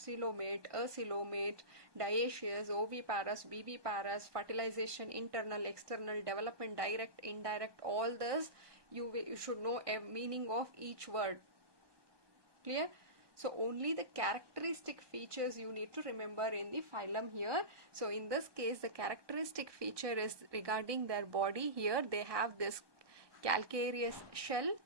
coelomate, acoelomate, dioecious, oviparous, viviparous, fertilization, internal, external, development, direct, indirect. All this you should know a meaning of each word. Clear? So only the characteristic features you need to remember in the phylum here. So in this case, the characteristic feature is regarding their body. Here they have this calcareous shell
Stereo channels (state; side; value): late; left; 1.2 ms